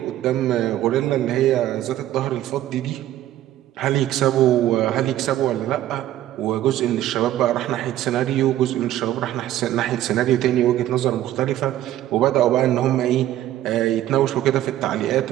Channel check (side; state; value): left; quieter; 13.3 dB